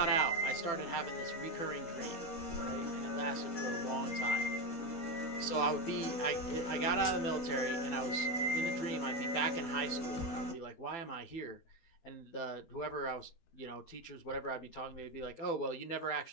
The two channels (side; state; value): right; late; 12 ms